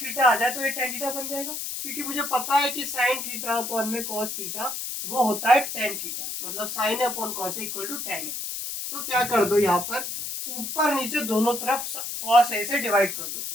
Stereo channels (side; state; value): left; noise; hiss, 5 dB below the sound